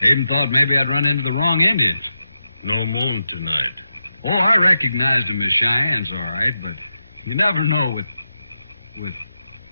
I even thought maybe I'd run into the wrong Indians. No moon tonight. Oh, I recognized them as Cheyennes, all right, but you never know with...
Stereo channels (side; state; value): both; inverted; correlation -0.87